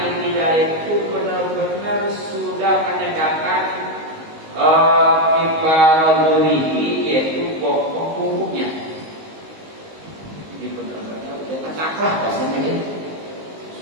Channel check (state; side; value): late; left; 19 ms